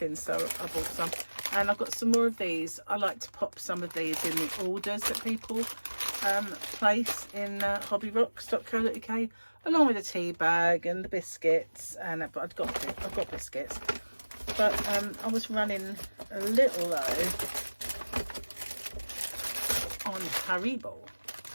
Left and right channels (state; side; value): inverted; both; correlation -1.00